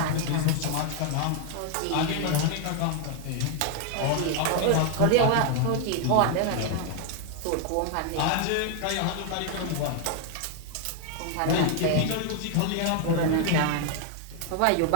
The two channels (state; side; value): different; both; correlation 0.00